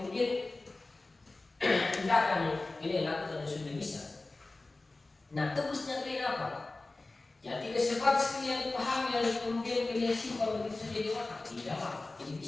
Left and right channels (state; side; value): quieter; right; 3.2 dB